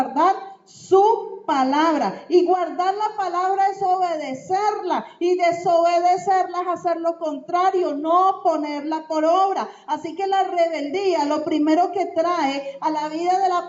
su palabra. Y guardar la palabra es obedecerla, y desobedecerla es hacer lo contrario, no ponerla por obra. Así que la rebeldía, lo primero que trae a la vida de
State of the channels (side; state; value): both; identical; correlation 1.00